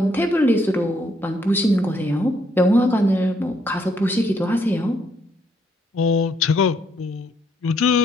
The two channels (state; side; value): normal; both; correlation 0.71